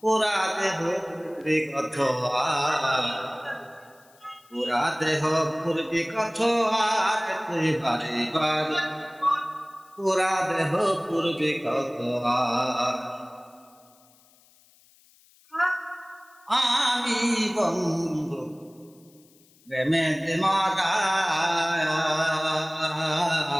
পুরা দেহ পূর্বী কত পুরা দেহ পূর্বী কত আর তুই বারে বার পুরা দেহ পূর্বী কত আমি বন্ধু প্রেমেতে মারা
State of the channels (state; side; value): noise; left; hiss, 30 dB below the sound